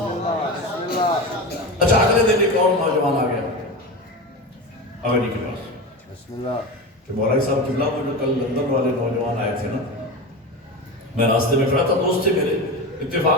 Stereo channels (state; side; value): normal; both; correlation 0.24